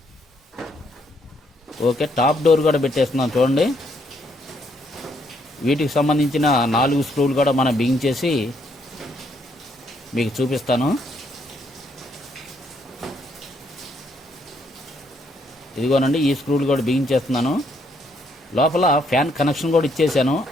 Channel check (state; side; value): normal; both; correlation 0.72